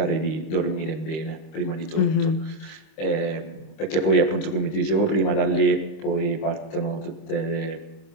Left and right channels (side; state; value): right; late; 26 ms